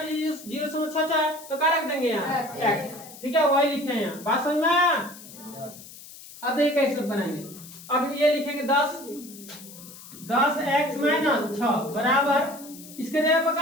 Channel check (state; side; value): noise; left; hiss, 17 dB below the sound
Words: 0.66 है तो क्या रख देंगे यहाँ x। ठीक है, वही लिखे हैं यहाँ। बात समझ में आया? अब ये कैसे बनाएंगे, अब ये लिखेंगे 10x - 6 बराबर इसके जगह पर